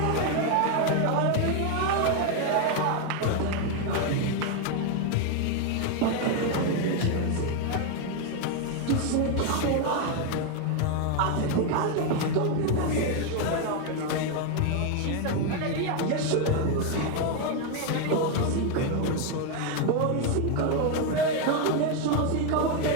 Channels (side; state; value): both; different; correlation 0.01